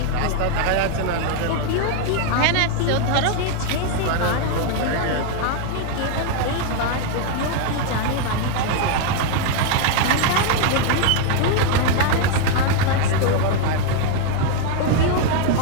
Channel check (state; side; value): different; both; correlation 0.01